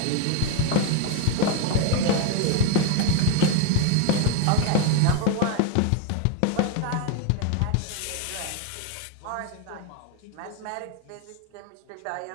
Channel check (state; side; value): different; both; correlation 0.01